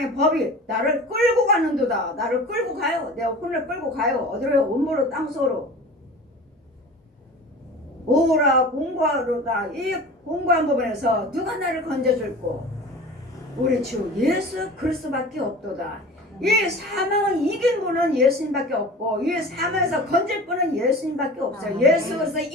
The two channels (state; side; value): normal; both; correlation 0.38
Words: 법이 나를 끌고 가는도다. 나를 끌고 가요. 내 혼을 끌고 가요. 어디로 음모로 땅속으로 오라 공고하로다. 이 공고한 부분에서 누가 나를 건져줄고 우리 주 예수 그리스도밖에 없도다. 이 사망을 이긴 분은 예수님밖에 없고 이 사망에서 건질 분은 예수님밖에 없어요. 예수 그리스도의